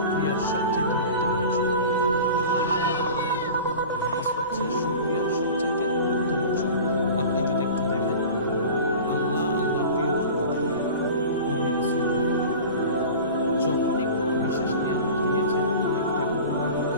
সবচেয়ে উত্তম অংশ। নামাজ হচ্ছে শুকরিয়ার সবচেয়ে উত্তম অংশ। আপনি যদি একটু দেখেন আল্লাহ প্রিয় বান্দাদের নবী রাসূল যখনই কোনো বিশেষ নিয়ামত দিয়েছেন, অনেকটা ঘটনা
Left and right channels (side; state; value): both; inverted; correlation -0.37